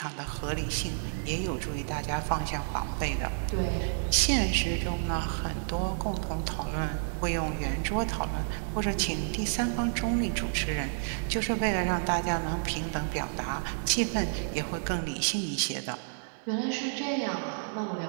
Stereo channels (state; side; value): silent; left; digital silence